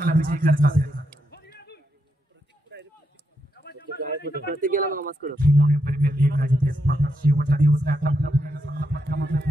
विजय करायचा असेल प्रत्येकाला नमस्कार प्रीमियर लीग जिथे स्पर्धा शेवटचा दिवस आहे आता आपल्या पुण्याला चांगला फटका मारला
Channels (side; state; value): both; normal; correlation 0.82